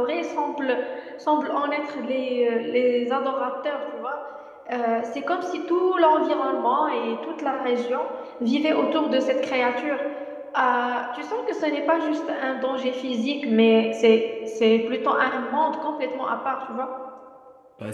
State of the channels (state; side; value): identical; both; correlation 1.00